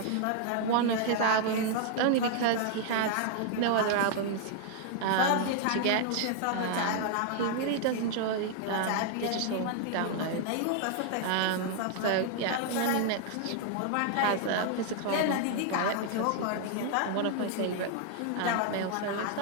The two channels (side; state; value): both; different; correlation -0.01